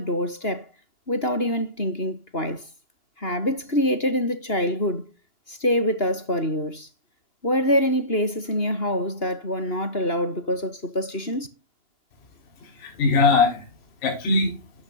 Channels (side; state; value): right; late; 2.9 ms